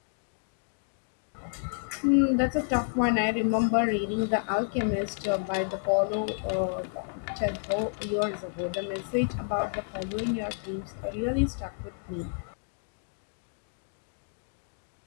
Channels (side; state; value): right; silent; digital silence